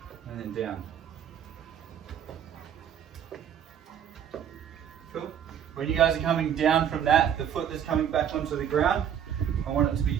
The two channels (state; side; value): quieter; left; 9.1 dB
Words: and then down. Cool. When you guys are coming down from that, the foot that's coming back onto the ground, I want it to be